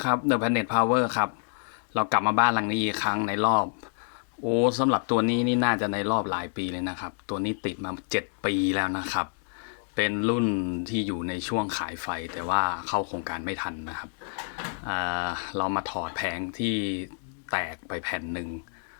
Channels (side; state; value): right; silent; digital silence